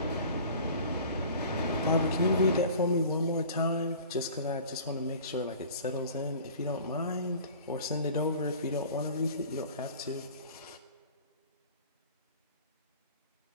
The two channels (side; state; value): both; inverted; correlation -0.44